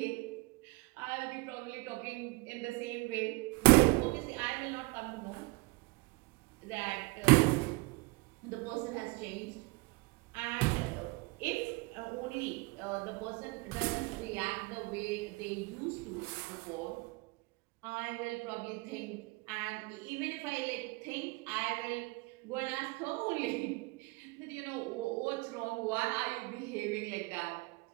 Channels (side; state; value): left; quieter; 25.3 dB